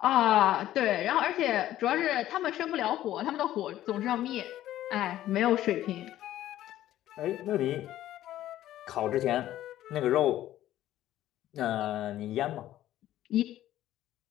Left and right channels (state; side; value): quieter; right; 13.4 dB